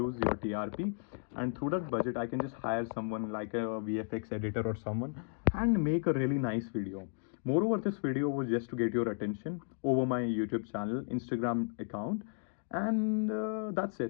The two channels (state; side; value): silent; right; 55 dB below the other